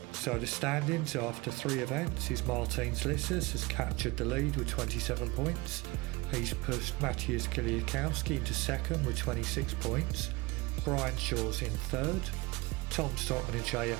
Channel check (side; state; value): left; quieter; 23.6 dB